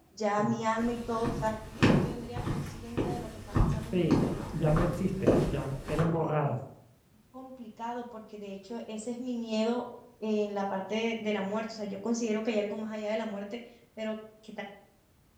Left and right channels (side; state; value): both; identical; correlation 1.00